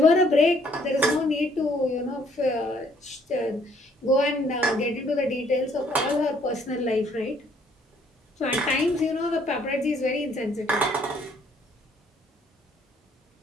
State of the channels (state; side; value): normal; both; correlation 0.64